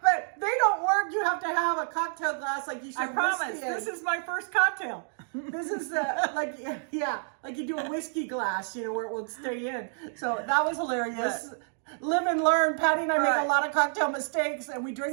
But they don't work. You have to have a cocktail glass like you should. I promise. This is my first cocktail. This is like you do a whiskey glass, you know, where it will stay in. So that was hilarious. Live and learn. Patti and I make a lot of cocktail mistakes, and we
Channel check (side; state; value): left; silent; digital silence